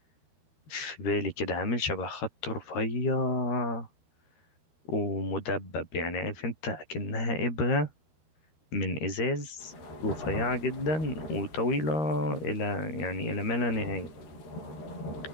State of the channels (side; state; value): right; late; 13 ms